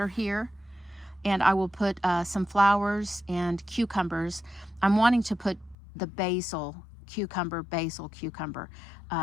here, and I will put some flowers and cucumbers. I'm wanting to put the basil cucumber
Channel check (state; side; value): drops out; right; at 5.8 s